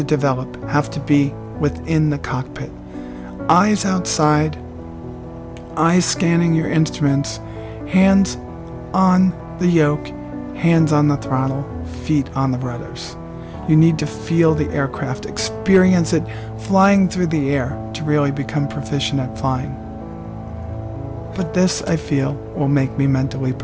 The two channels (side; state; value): both; identical; correlation 1.00